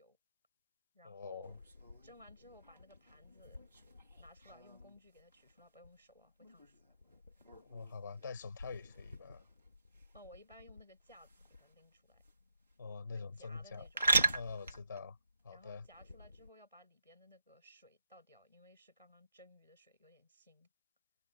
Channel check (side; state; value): both; inverted; correlation -0.85